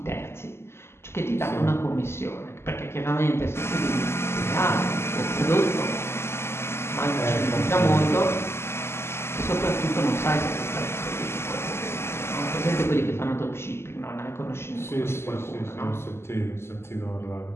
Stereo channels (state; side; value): late; right; 0.12 ms